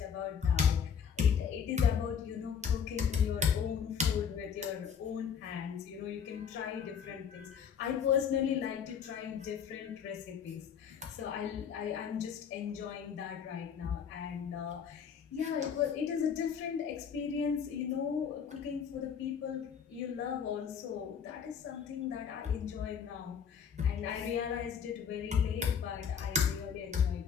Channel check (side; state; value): right; quieter; 7.3 dB